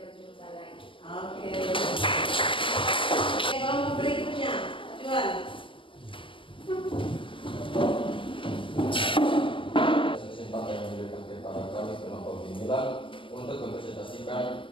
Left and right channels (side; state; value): right; late; 0.25 ms